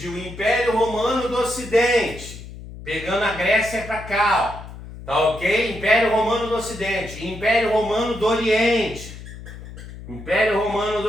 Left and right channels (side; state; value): left; noise; hum, 14 dB below the sound